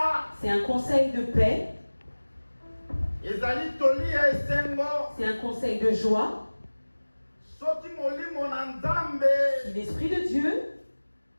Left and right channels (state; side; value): inverted; both; correlation -1.00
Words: C'est un conseil de paix. Ezali toli ya esengo. C'est un conseil de joie. Soki molimo na Nzambe. Si l'Esprit de Dieu